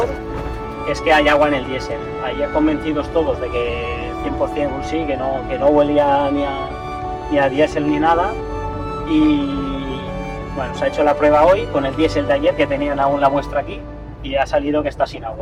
es que hay agua en el diésel. Ayer convencidos todos de que 100% sí, que no huelía ni a diésel ni nada. Y bueno, se ha hecho la prueba hoy con el diésel de ayer, que tenían aún la muestra aquí, y ha salido que está sin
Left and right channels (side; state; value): both; identical; correlation 1.00